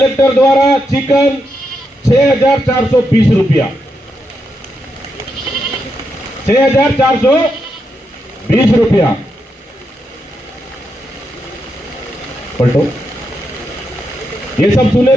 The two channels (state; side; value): normal; both; correlation 0.83